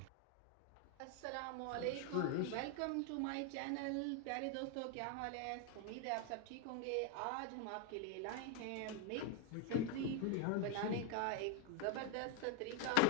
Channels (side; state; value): both; different; correlation 0.01